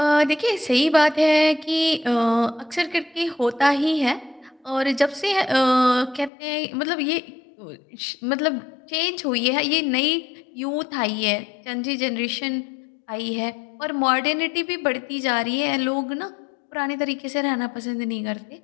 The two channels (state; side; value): drops out; right; at 6.3 s